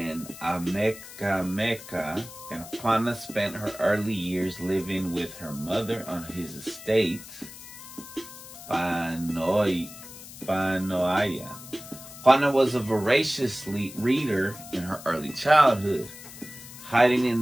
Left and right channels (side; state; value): left; noise; hiss, 15 dB below the sound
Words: Amecameca, and Juana spent her early years living with her mother on his estate, Panoaya. Juana was a voracious reader in her early childhood, hiding